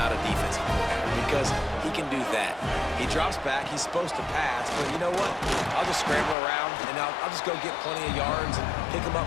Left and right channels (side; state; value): right; drops out; at 6.4 s